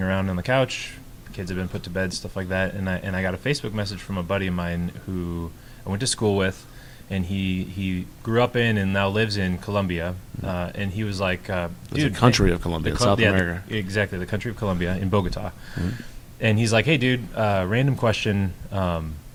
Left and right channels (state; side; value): identical; both; correlation 1.00